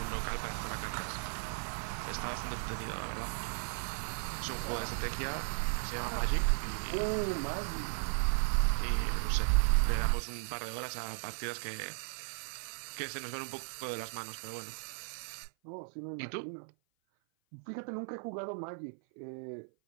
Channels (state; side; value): silent; left; 54 dB below the other